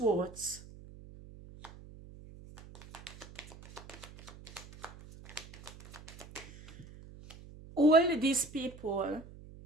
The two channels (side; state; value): right; noise; hum, 18 dB below the sound